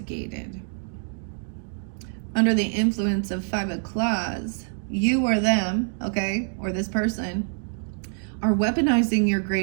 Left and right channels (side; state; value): left; silent; digital silence